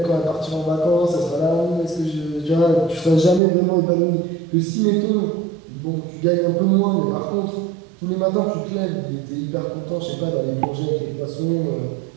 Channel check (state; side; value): drops out; left; at 3.4 s